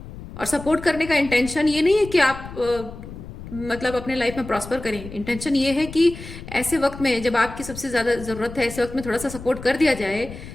और सपोर्ट करने का इंटेंशन ये नहीं है कि आप मतलब अपने लाइफ में प्रॉस्पर करें। इंटेंशन ये है कि ऐसे वक्त में जब आपकी सबसे ज्यादा जरूरत है, ऐसे वक्त में थोड़ा सा सपोर्ट कर दिया जाए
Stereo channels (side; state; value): left; noise; rumble, 13 dB below the sound